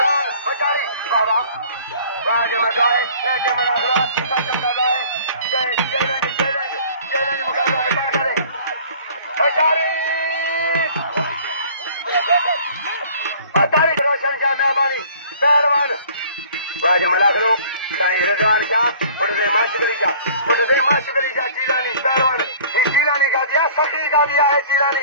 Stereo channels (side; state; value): both; inverted; correlation -0.50